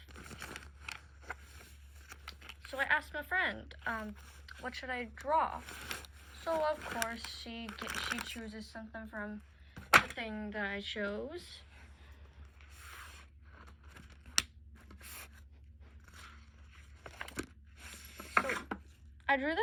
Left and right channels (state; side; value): identical; both; correlation 1.00